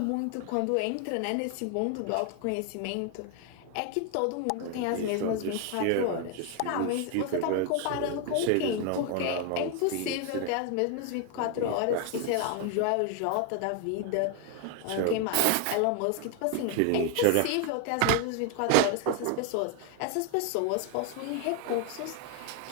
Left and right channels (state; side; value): different; both; correlation 0.01